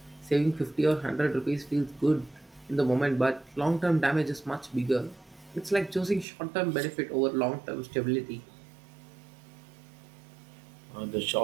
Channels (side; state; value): left; drops out; at 6.2 s